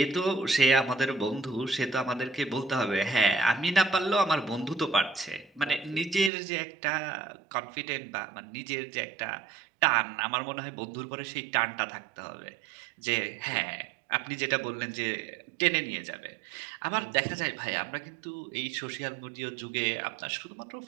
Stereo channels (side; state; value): left; drops out; at 6.3 s